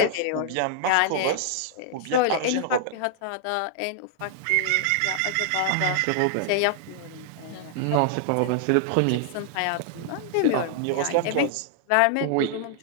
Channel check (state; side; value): different; both; correlation -0.01